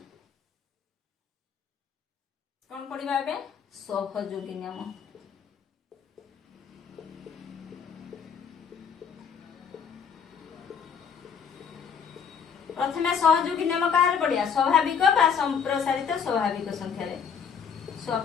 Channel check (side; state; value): right; quieter; 6.9 dB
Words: कोन पढिबा एबे सहयोगी नियम प्रथमे सहयोगी नियम काहर पढिया स्वाभाविक बा संप्रसारित स्वाभाविक संख्या रे